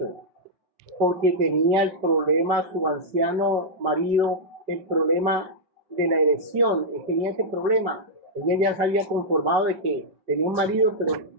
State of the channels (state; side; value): late; left; 5.4 ms